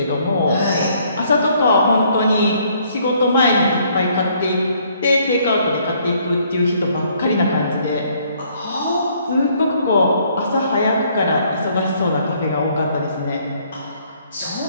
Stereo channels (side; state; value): both; inverted; correlation -0.65